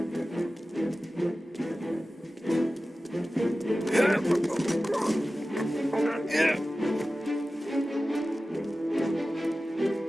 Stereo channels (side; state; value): both; normal; correlation 0.95